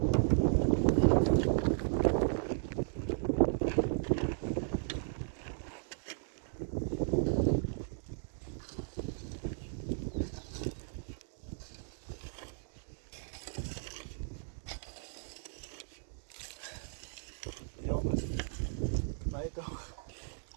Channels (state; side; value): silent; left; digital silence